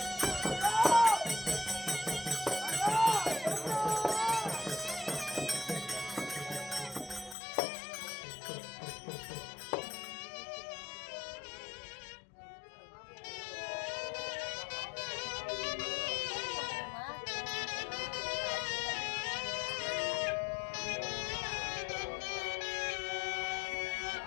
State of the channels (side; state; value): right; drops out; at 7.4 s